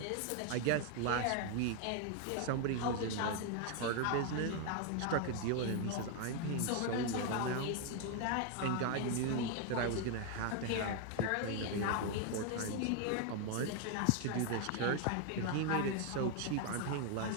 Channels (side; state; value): both; different; correlation 0.00